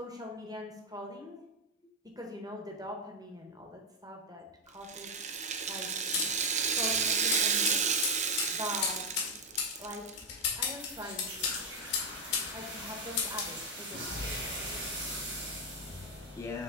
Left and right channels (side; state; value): both; normal; correlation 0.03